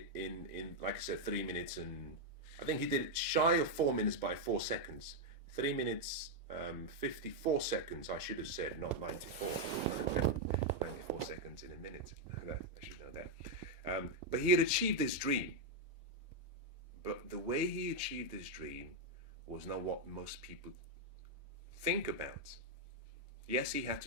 in like I said, 3 minutes, and I think he did it shy of 4 minutes by 4 seconds. 3 minutes, 54 seconds, I should have said, not 94. 94 seconds in a minute. I should know that. But he had achieved his dream. But the way he achieved his dream was not what most people think about. Yes, he had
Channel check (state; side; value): normal; both; correlation 0.00